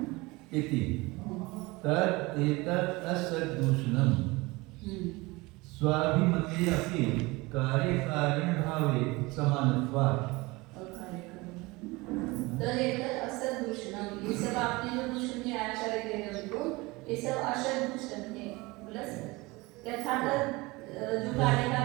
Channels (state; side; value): quieter; left; 23.1 dB